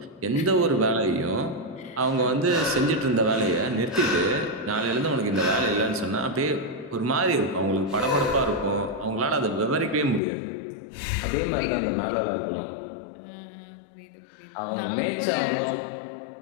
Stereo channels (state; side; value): drops out; right; at 10.2 s